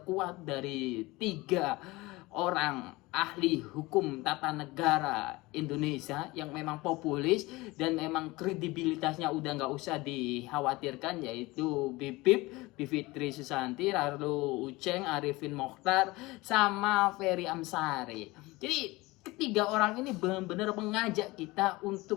kuat dari 3 orang ahli hukum tata negara Indonesia yang memang populis dan memang kredibilitasnya udah nggak usah dikhawatirkan, yaitu Bivitri Susanti, lalu Uceng, Arifin Mokhtar, sama Ferry Amsari. Jadi ketiga orang ini benar-benar mengajak kita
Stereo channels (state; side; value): quieter; right; 21.5 dB